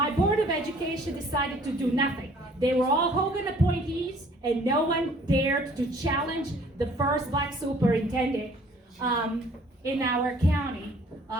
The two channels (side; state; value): both; normal; correlation 0.56